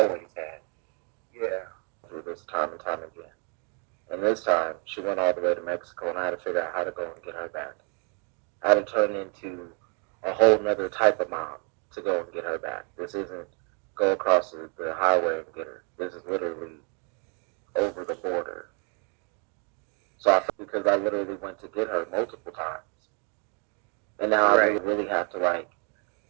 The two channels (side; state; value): left; quieter; 37.7 dB